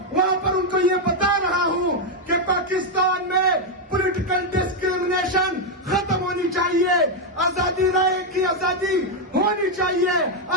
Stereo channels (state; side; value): normal; both; correlation 0.02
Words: وہاں پر ان کو یہ بتا رہا ہوں کہ پاکستان میں پولیٹیکل ڈسکریمنیشن ختم ہونی چاہیے, آزادی رائے کی آزادی ہونی چاہیے,